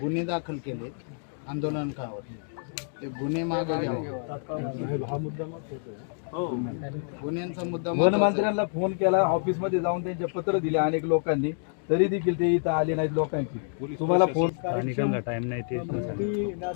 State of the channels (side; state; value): right; silent; digital silence